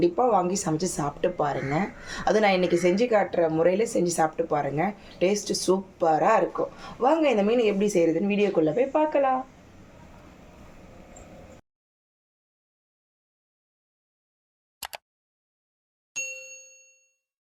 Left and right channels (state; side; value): identical; both; correlation 1.00